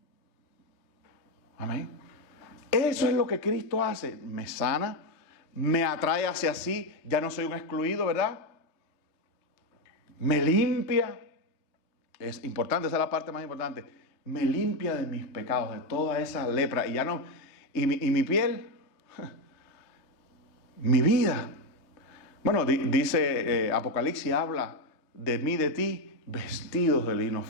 Amén. Eso es lo que Cristo hace. Me sana, me atrae hacia sí. Ya no soy un excluido, ¿verdad? Me limpia, es importante, esa es la parte más importante, me limpia de mis pecados, de toda esa lepra, y ya no, y mi piel, mi vida. Bueno, dice Apocalipsis, habla de mí, de ti, vestidos de lino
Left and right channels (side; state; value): right; late; 3.2 ms